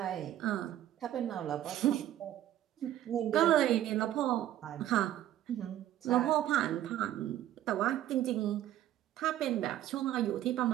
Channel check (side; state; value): left; quieter; 12.5 dB